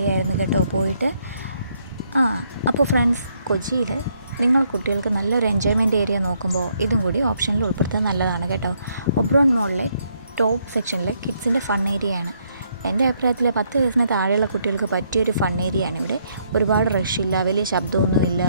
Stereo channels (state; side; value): inverted; both; correlation -0.72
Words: കേട്ടോ പോയിട്ട്. അപ്പോൾ ഫ്രണ്ട്സ്, കൊച്ചിയിൽ നിങ്ങൾ കുട്ടികൾക്ക് നല്ലൊരു എൻജോയ്മെൻറ്റ് ഏരിയ നോക്കുമ്പോൾ ഇതും കൂടി ഓപ്ഷനിൽ ഉൾപ്പെടുത്തുന്നത് നല്ലതാണ് കേട്ടോ. ഒബ്രോൺ മോളിലെ ടോപ്പ് സെക്ഷനിലെ കിഡ്സിൻ്റെ ഫൺ ഏരിയയാണ്. എൻ്റെ അഭിപ്രായത്തിൽ 10 വയസ്സിന് താഴെയുള്ള കുട്ടികൾക്ക് പറ്റിയൊരു ഫൺ ഏരിയയാണ് ഇവിടെ. ഒരുപാട് റഷില്ല, വലിയ ശബ്ദമൊന്നുമില്ല,